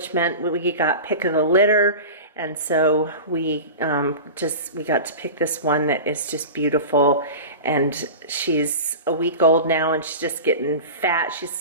meant we got pick of the litter. And so we got to pick this one that is just beautiful, and she's a week old now, and she's just getting fat.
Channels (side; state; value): both; inverted; correlation -0.31